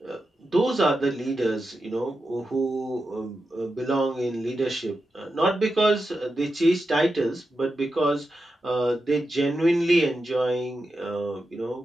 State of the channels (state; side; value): normal; both; correlation 0.89